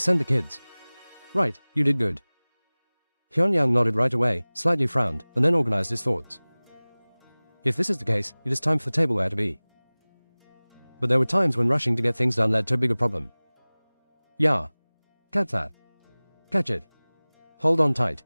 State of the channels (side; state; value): both; inverted; correlation -1.00